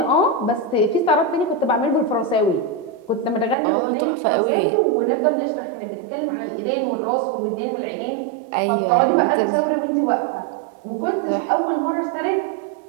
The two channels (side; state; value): left; drops out; at 3.6 s